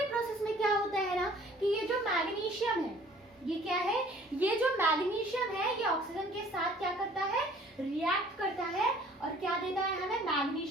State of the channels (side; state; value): both; normal; correlation 0.54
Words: प्रोसेस में क्या होता है ना कि ये जो मैग्नीशियम है, ये क्या है, ये जो मैग्नीशियम है ये ऑक्सीजन के साथ क्या करता है, रिएक्ट करता है और क्या देता है हमें,